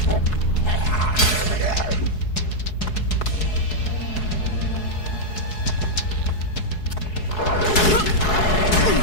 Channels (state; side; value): late; right; 4.7 ms